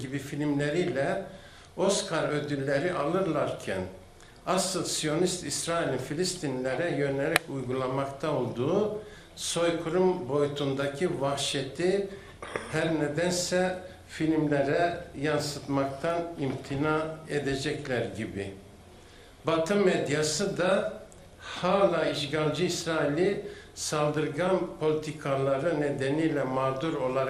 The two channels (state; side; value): identical; both; correlation 1.00